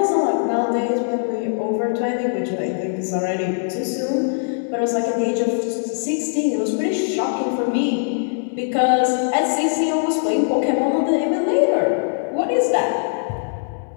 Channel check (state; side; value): silent; right; 65 dB below the other